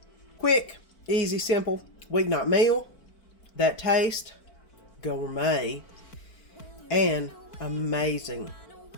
Quick, easy, simple weeknight meal. That taste, gourmet, and amazing.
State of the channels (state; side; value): late; right; 4.5 ms